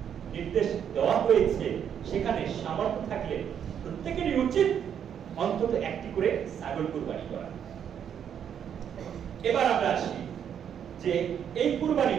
নির্দেশ দেওয়া হয়েছে। সেখানে সামর্থ্য থাকলে প্রত্যেকেরই উচিত অন্তত একটি করে ছাগল কুরবানি করা। এবার আমরা আসি যে এই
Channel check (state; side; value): quieter; left; 8.6 dB